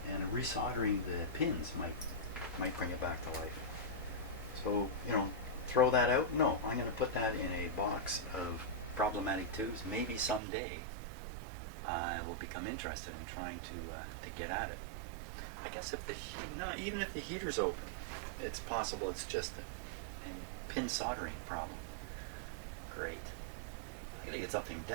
and resoldering the pins might bring it back to life. So, you know, throw that out? No, I'm going to put that in a box of problematic tubes. Maybe someday I will become interested in trying to get at it. I guess if even if the heater's open, it's possible it's just a pin soldering problem. Great. I gotta get something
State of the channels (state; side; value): drops out; left; at 10.4 s